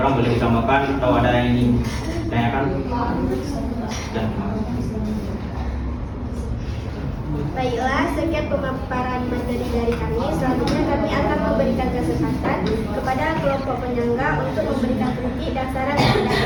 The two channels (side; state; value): both; identical; correlation 1.00